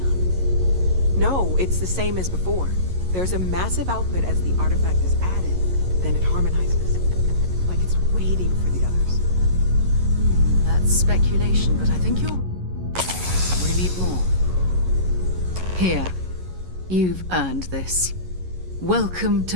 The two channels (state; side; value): late; left; 11 ms